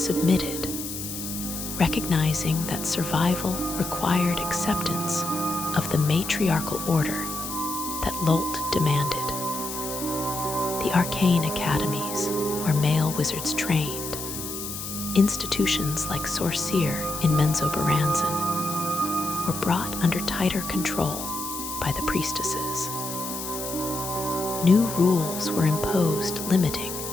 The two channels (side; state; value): left; noise; hiss, 7 dB below the sound